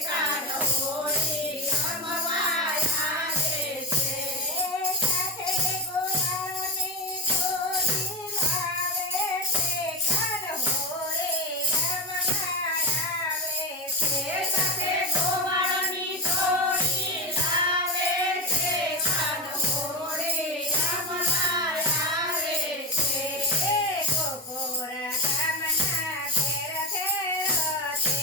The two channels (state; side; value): normal; both; correlation 0.20